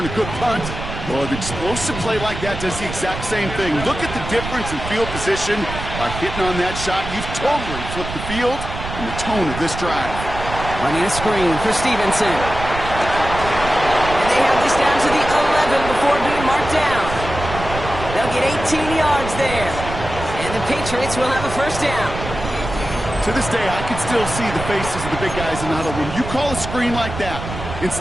a good punt. Well, an explosive play like that does the exact same thing. Look at the difference in field position by hitting on that shot. You've totally flipped the field and the tone of this drive. Running a screen for Stevenson. And they have this down to the 11 before being marked down. They'll get 18 yards there. And the Patriots will have a 1st down. To this day, I can still see the faces of the big guys in the huddle. When you call a screen like that,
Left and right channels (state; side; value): noise; right; rumble, 8 dB below the sound